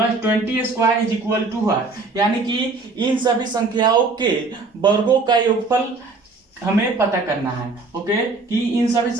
20 square is equal to what. यानी कि इन सभी संख्याओं के वर्गों का योगफल हमें पता करना है। ओके, कि इन सभी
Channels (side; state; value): left; quieter; 3.8 dB